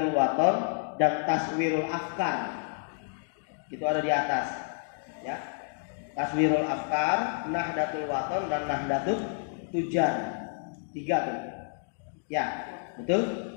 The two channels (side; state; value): right; silent; digital silence